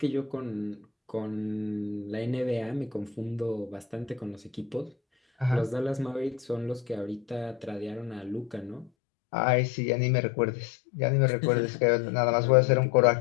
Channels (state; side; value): drops out; right; at 8.9 s